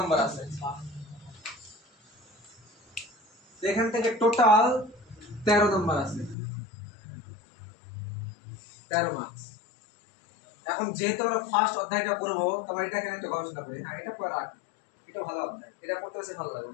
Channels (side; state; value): right; drops out; at 6.4 s